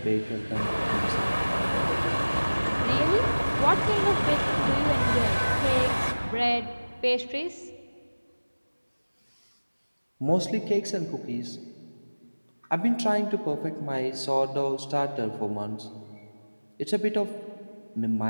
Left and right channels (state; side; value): inverted; both; correlation -1.00